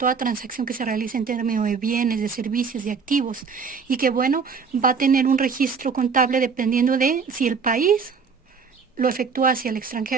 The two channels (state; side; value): quieter; left; 5.6 dB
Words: transacción que se realiza en términos de bienes, de servicios, de activos, y que bueno, va a tener un registro contable dependiendo de si el país lo efectúa hacia el